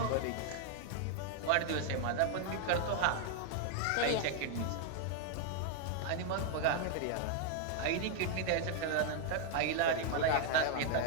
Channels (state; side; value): different; both; correlation 0.00